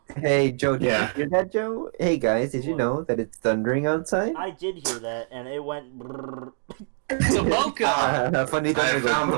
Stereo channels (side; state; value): left; silent; digital silence